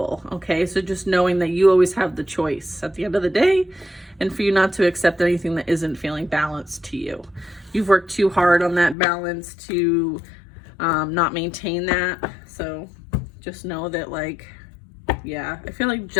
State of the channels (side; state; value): right; drops out; at 9.0 s